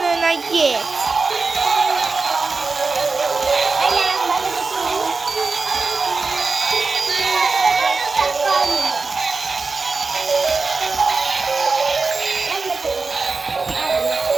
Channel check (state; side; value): quieter; left; 4.1 dB